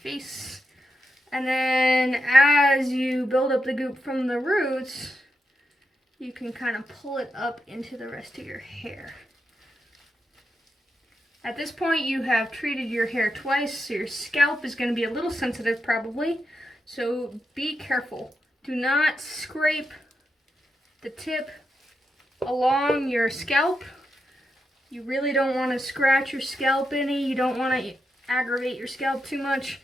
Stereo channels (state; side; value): normal; both; correlation 0.86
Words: And then as you build up the goop from the roots, you can kind of pull it up into the rest of your hair. At this point, you have treated your hair twice, so your scalp is going to be a little sensitive probably. So be careful. Do not scrape the tip along your scalp. You really don't want to scratch your scalp any. You don't want to aggravate your scalp too much